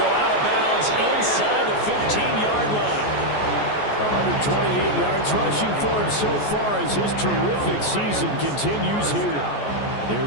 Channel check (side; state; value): right; late; 14 ms